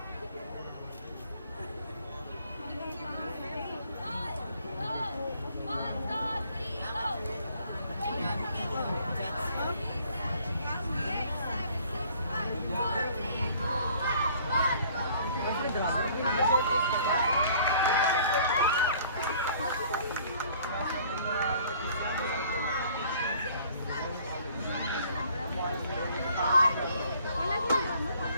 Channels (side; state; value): both; inverted; correlation -0.56